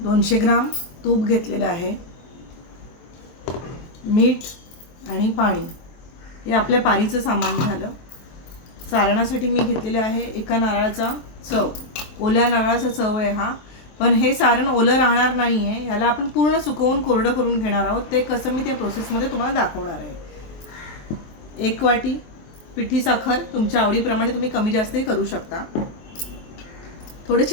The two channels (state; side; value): late; right; 23 ms